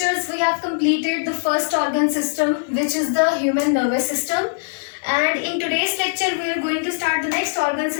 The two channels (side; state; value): right; silent; digital silence